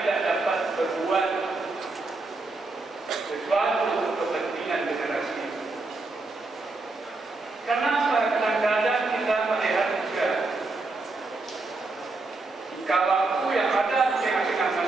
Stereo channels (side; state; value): left; quieter; 3.4 dB